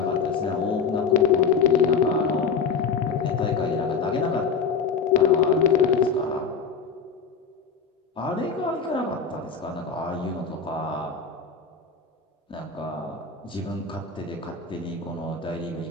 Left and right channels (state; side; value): quieter; right; 5.7 dB